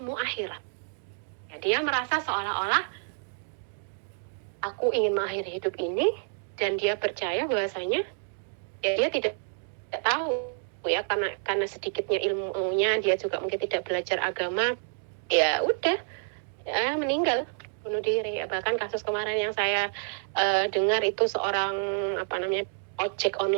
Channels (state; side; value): silent; left; digital silence